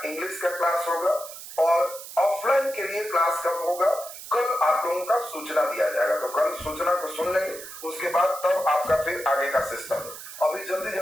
इंग्लिश का क्लास होगा और ऑफलाइन के लिए क्लास कब होगा? कल आप लोगों का सूचना दिया जाएगा, तो कल सूचना को सुन लेंगे, उसके बाद तब आपका फिर आगे का सिस्टम। अभी जल्दी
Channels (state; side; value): noise; right; hiss, 13 dB below the sound